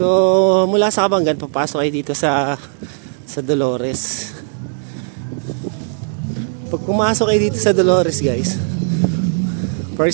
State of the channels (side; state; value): left; silent; 68 dB below the other